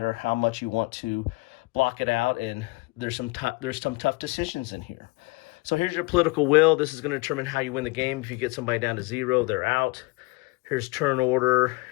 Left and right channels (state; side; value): quieter; right; 25.0 dB